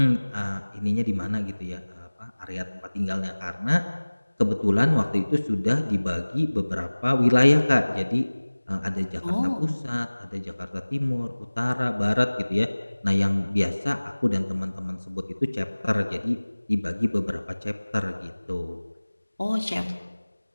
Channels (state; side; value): inverted; both; correlation -1.00